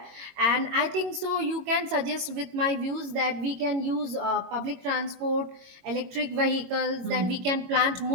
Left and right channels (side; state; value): left; late; 22 ms